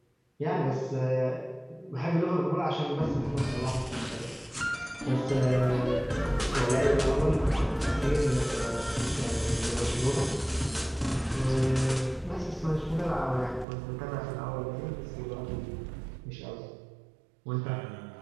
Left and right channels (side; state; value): left; drops out; at 13.7 s